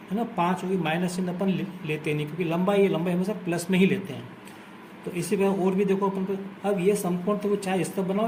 ना, 5 होगी। माइनस चिन्ह अपन लेते नहीं, क्योंकि लंबाई हमेशा प्लस में ही लेते हैं। तो इसी तरह और भी देखो अपन पर। अब ये समकोण तो चाहे इस तरफ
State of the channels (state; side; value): identical; both; correlation 1.00